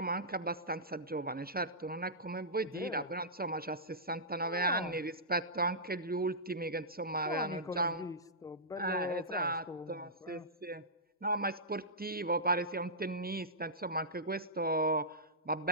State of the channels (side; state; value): both; normal; correlation -0.16